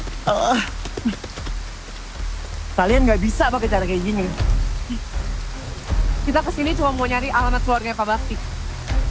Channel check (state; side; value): identical; both; correlation 1.00